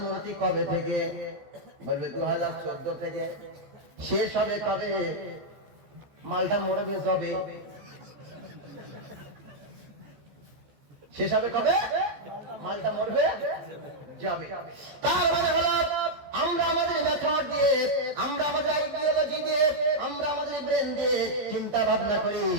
কবে থেকে, বলবে 2014 থেকে। শেষ হবে কবে, মালটা মরবে যবে। শেষ হবে কবে, মালটা মরবে যাবে। তার মানে হলো আমরা আমাদের মেথড দিয়ে, আমরা আমাদের আইডিওলজি দিয়ে, আমরা আমাদের ব্রেন দিয়ে চিন্তা ভাবনা করি।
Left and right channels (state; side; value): late; left; 14 ms